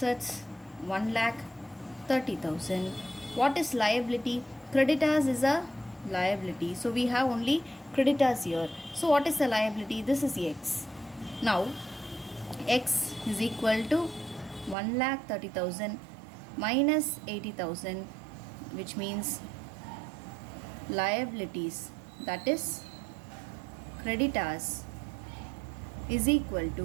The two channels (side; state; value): left; drops out; at 14.8 s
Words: 1,30,000. What is liability? Creditors is a liability, so we have only creditors here. So what is the liability? This is X. Now X is equal to 1,30,000 minus 80,000, which means liabilities, that is creditors, is equal